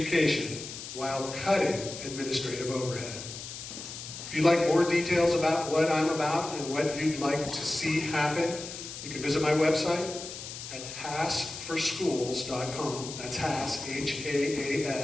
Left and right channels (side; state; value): left; noise; hiss, 10 dB below the sound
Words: while cutting administrative overhead. If you'd like more details about what I'm about and what you'd like to see happen, you can visit my website at haasforschools.com. That's Haas,